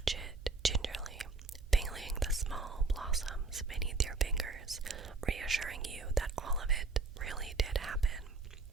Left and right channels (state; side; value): quieter; left; 3.9 dB